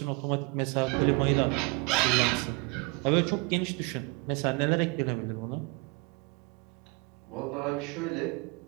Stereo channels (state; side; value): quieter; left; 28.2 dB